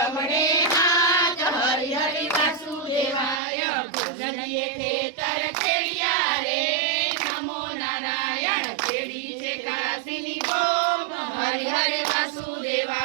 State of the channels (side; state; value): left; drops out; at 3.4 s